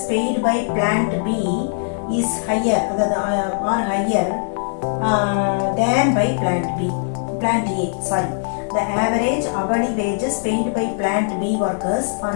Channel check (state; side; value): silent; right; digital silence